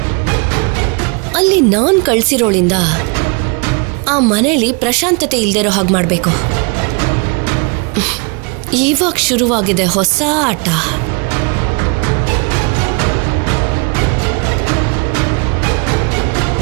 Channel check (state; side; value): quieter; left; 33.5 dB